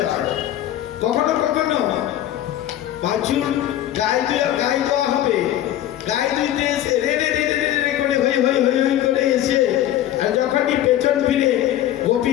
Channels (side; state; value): right; quieter; 12.6 dB